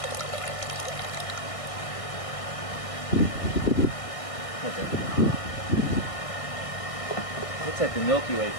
Looks like the Milky Way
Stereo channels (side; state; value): right; late; 1.6 ms